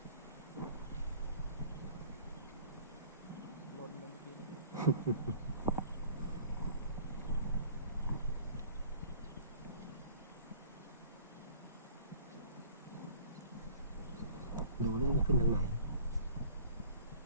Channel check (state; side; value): inverted; both; correlation -0.49